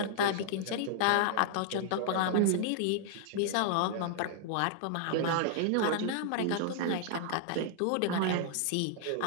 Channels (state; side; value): different; both; correlation -0.01